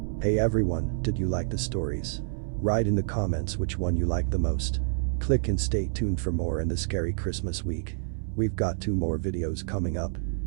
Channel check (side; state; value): left; silent; 59 dB below the other